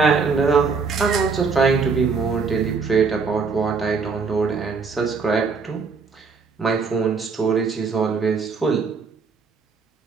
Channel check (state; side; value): quieter; left; 4.9 dB